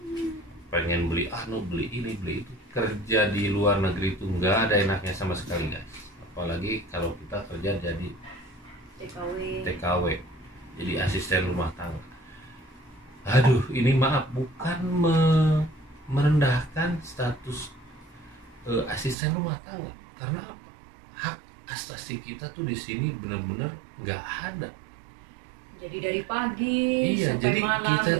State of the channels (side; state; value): left; drops out; at 19.2 s